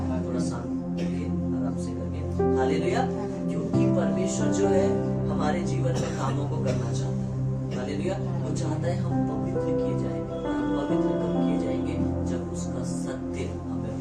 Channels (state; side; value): identical; both; correlation 1.00